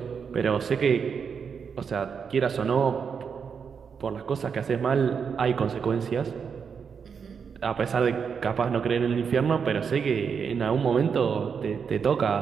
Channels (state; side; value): quieter; left; 6.4 dB